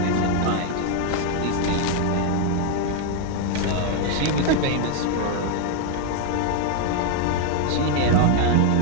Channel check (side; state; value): both; different; correlation 0.00